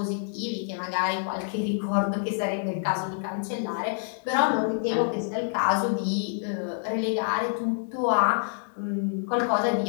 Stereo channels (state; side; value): silent; right; digital silence